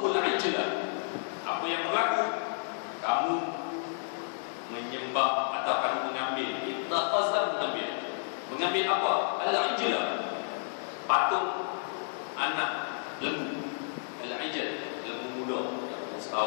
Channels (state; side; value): silent; right; digital silence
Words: ijla, apa yang berlaku? Kamu menyembah atau kamu mengambil, ittakhaza, mengambil apa? Al-ijla, patung anak lembu. Al-ijl, lembu muda yang